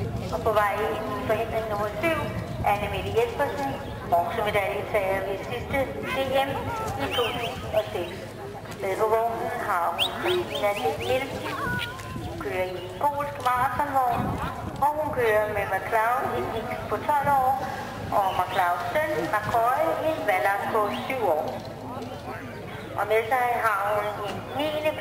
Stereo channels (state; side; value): identical; both; correlation 1.00